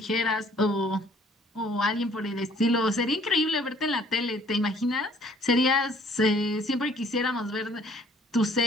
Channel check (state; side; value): normal; both; correlation 0.58